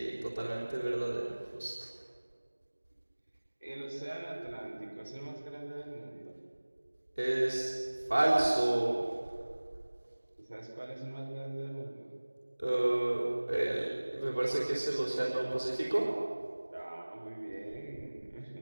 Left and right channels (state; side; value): inverted; both; correlation -1.00